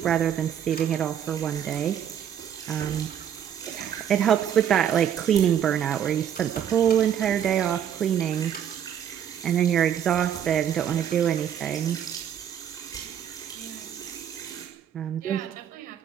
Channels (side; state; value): left; quieter; 9.4 dB